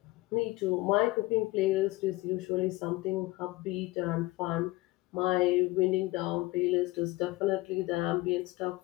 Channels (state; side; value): quieter; right; 20.4 dB